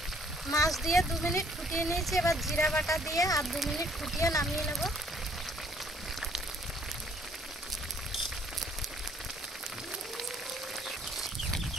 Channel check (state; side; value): normal; both; correlation 0.62